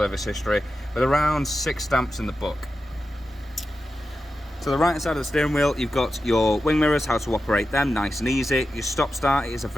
history, with around 6 stamps in the book. To the right hand side of the steering wheel, you've got your wing mirrors, how to operate them, nice and easy. Your stop start is a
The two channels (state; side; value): normal; both; correlation 0.91